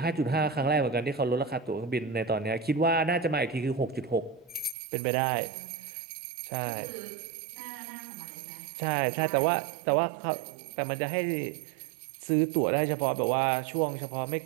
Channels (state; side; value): drops out; left; at 4.8 s